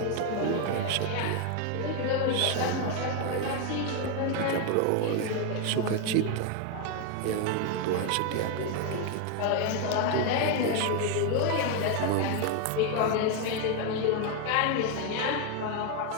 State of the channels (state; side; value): different; both; correlation 0.01